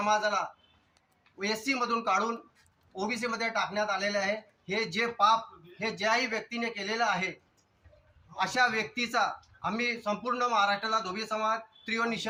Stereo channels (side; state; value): both; identical; correlation 1.00